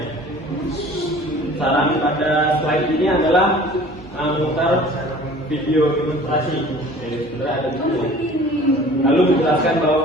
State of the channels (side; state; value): both; normal; correlation 0.46